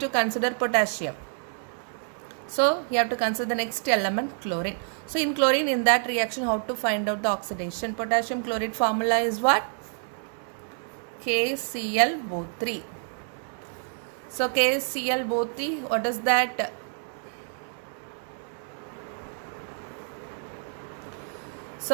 consider potassium. So you have to consider the next element chlorine. So in chlorine, in that reaction, how to find out the oxidation? Potassium chloride formula is what? KClO3. So KClO3, what is that?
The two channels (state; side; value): silent; left; 59 dB below the other